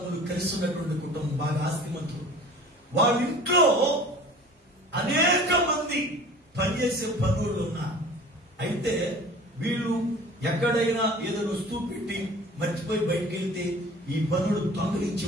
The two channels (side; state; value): both; normal; correlation 0.44